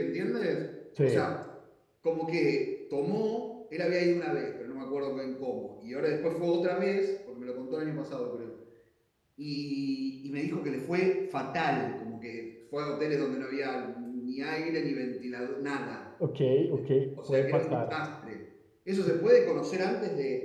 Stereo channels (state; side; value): identical; both; correlation 1.00